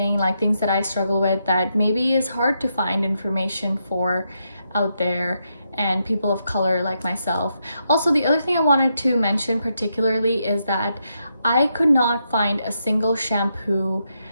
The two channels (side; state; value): both; inverted; correlation -0.81